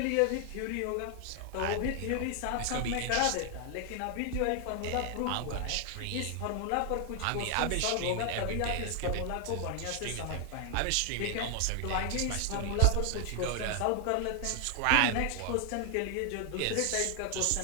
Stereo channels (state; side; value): different; both; correlation 0.00